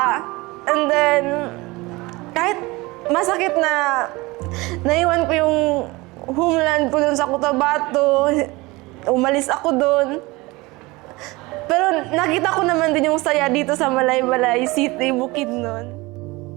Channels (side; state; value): left; quieter; 22.7 dB